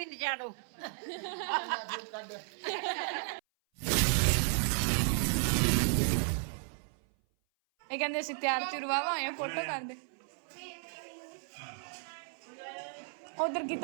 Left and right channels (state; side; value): silent; left; 55 dB below the other